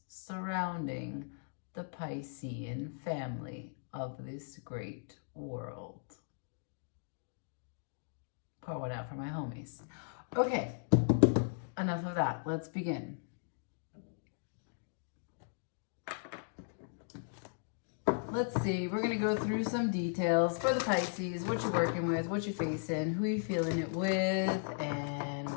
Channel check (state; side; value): silent; right; digital silence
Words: surrounding the Piscean family of this great world. Pour one out for my homies. Okay, enough of that. Let's begin. Let's see, we're going to go through some details for the Pisces, what you're working with, what you're facing, who you're feeling it with, and